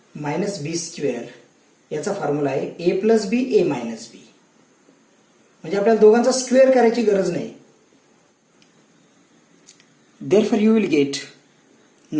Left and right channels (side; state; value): both; identical; correlation 1.00